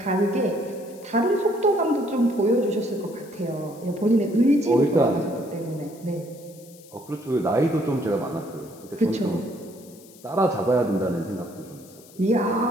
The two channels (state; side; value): noise; left; hiss, 23 dB below the sound